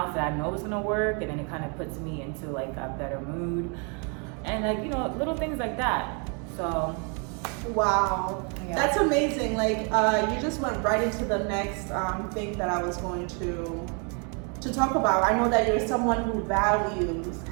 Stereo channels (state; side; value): quieter; left; 36.6 dB